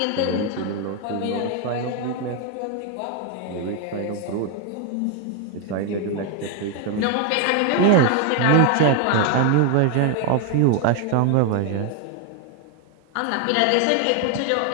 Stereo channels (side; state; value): both; different; correlation 0.01